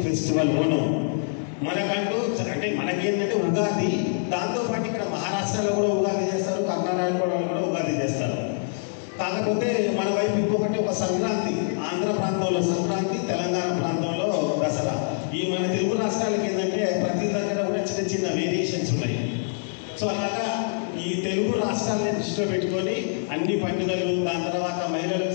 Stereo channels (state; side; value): silent; right; digital silence